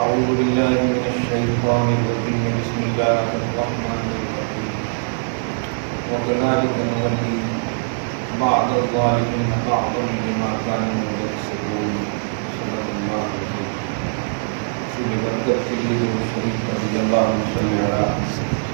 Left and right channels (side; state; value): left; silent; digital silence